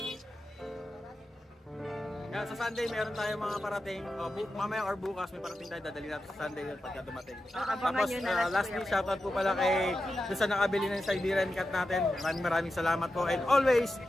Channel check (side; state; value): both; normal; correlation 0.90